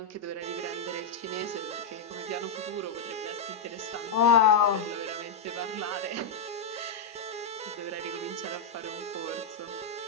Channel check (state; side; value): quieter; right; 4.1 dB